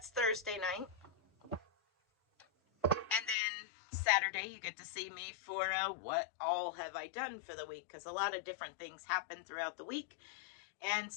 Thursday night. And then Saturday you get to see me for what all have I done for the week, because a lot of different things happen throughout the week. And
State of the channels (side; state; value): right; drops out; at 3.4 s